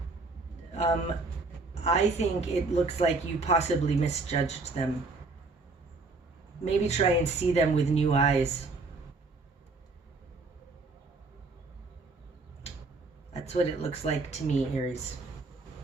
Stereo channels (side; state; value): left; quieter; 3.6 dB